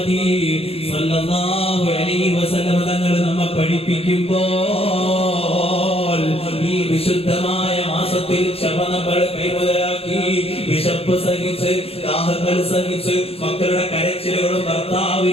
സ്വല്ലല്ലാഹു അലൈഹി വസല്ലം തങ്ങൾ നമ്മെ പഠിപ്പിക്കുമ്പോൾ ഈ വിശുദ്ധമായ മാസത്തിൽ ക്ഷമ നമ്മൾ കൈമുതലാക്കി, വിശപ്പ് സഹിച്ച്, ദാഹങ്ങൾ സഹിച്ച്, മക്കളുടെ കരച്ചിലുകളും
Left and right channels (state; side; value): late; right; 0.28 ms